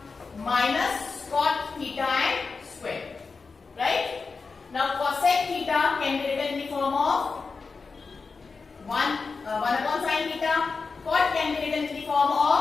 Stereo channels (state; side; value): quieter; right; 4.6 dB